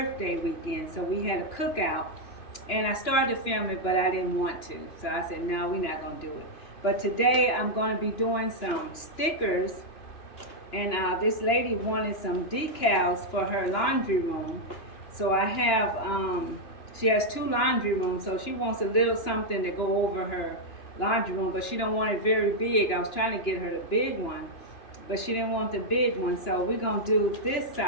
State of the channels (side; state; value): right; late; 2.9 ms